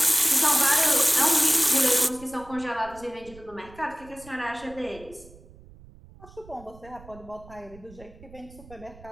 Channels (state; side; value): noise; right; rumble, 21 dB below the sound